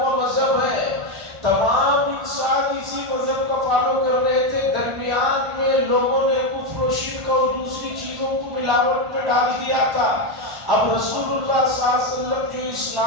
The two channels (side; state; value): left; late; 1.5 ms